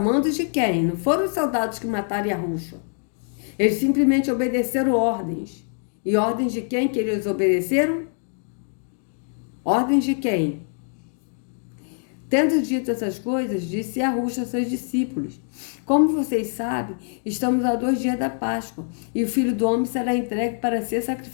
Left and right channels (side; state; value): right; silent; 55 dB below the other